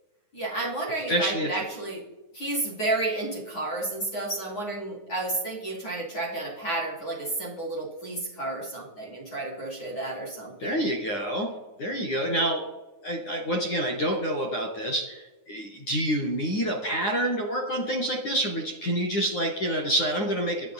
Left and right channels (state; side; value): late; right; 9.5 ms